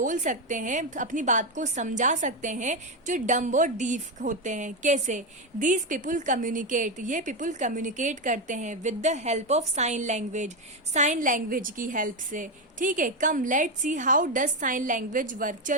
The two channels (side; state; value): both; normal; correlation 0.10